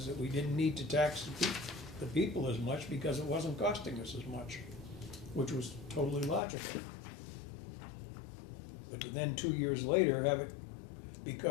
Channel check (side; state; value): right; drops out; at 6.4 s